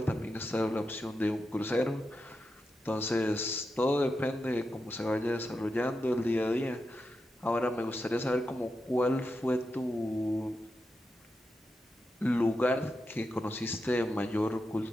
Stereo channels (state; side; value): normal; both; correlation 0.88